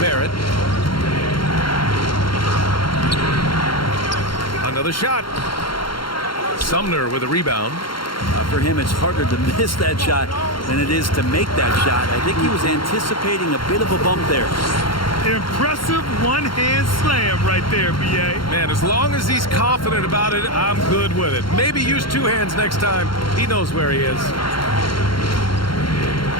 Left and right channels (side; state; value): right; late; 0.73 ms